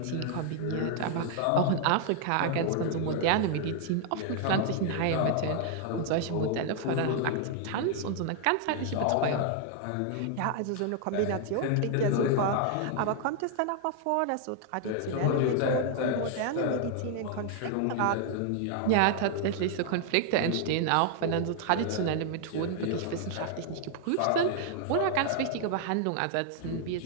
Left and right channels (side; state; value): both; different; correlation 0.00